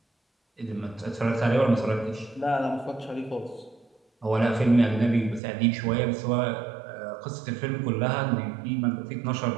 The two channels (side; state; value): left; drops out; at 5.4 s